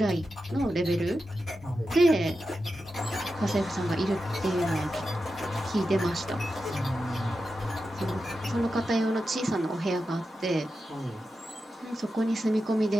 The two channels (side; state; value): both; normal; correlation 0.90